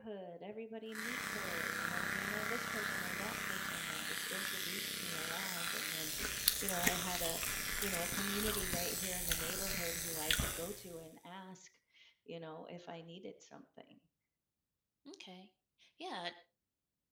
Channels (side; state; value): both; identical; correlation 1.00